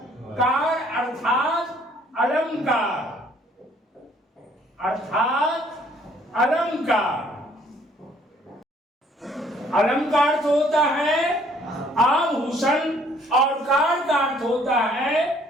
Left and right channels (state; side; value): normal; both; correlation 0.61